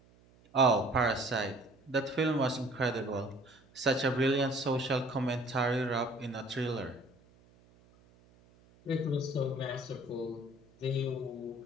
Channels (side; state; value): right; noise; hum, 29 dB below the sound